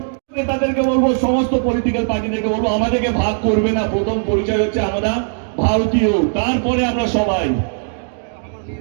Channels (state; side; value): silent; left; digital silence